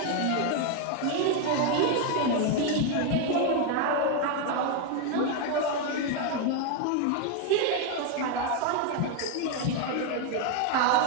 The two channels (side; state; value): both; different; correlation 0.01